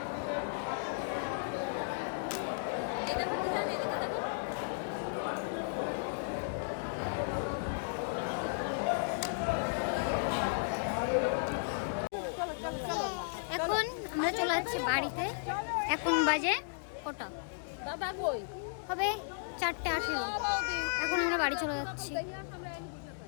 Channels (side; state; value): right; silent; digital silence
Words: এখন আমরা চলে যাচ্ছি বাড়িতে। এখন বাজে কটা দাদা কই হবে, 4:18। এখন আমরা বাড়ি চলে যাচ্ছি,